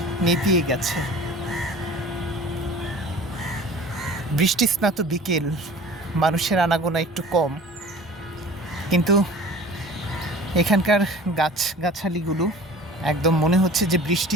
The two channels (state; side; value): normal; both; correlation 0.43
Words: নেতিয়ে গেছে। বৃষ্টি স্নাত বিকেল, মানুষের আনাগোনা একটু কম, কিন্তু এখানকার গাছগাছালিগুলো একদম মনে হচ্ছে যে